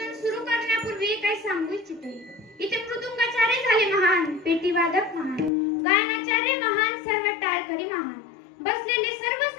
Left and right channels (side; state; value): right; drops out; at 5.5 s